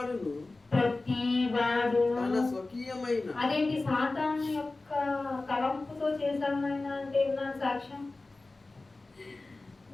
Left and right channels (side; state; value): right; quieter; 3.3 dB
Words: స్వకీయమైన. అదేంటి? సాతాను యొక్క తలంపుతో చేశామైనా అంటే నా సాక్ష్యం